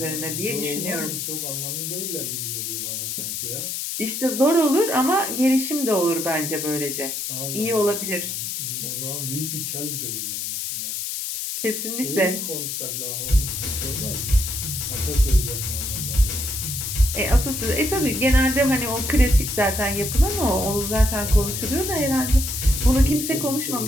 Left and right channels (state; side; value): noise; left; hiss, 4 dB below the sound